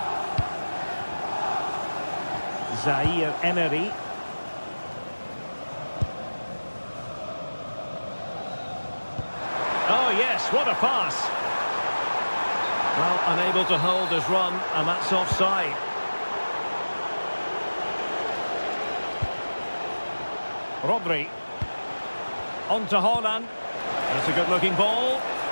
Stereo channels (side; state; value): both; inverted; correlation -1.00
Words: Zaire Emery. Oh yes, what a pass! Well, unable to hold his run, and that's offside. Rodri. On to Haaland. That's a good-looking ball.